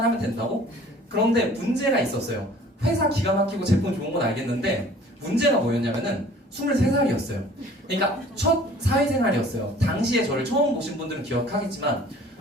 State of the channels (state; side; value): normal; both; correlation 0.50